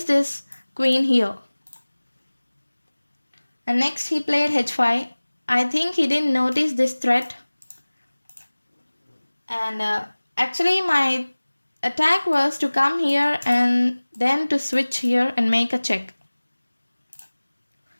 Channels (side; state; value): both; inverted; correlation -1.00